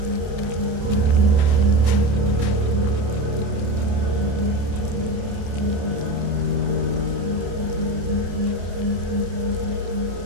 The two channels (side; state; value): left; late; 28 ms